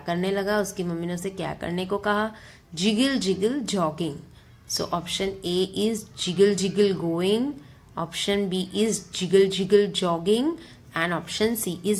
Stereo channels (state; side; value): identical; both; correlation 1.00